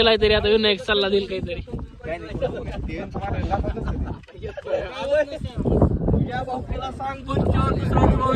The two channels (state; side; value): identical; both; correlation 1.00